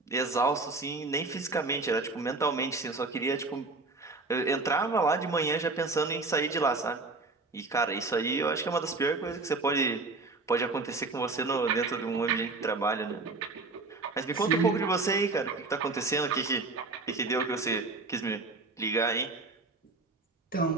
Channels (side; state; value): left; quieter; 3.6 dB